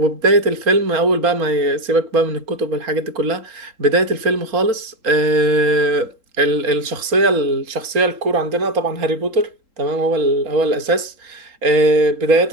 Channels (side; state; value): left; late; 3.8 ms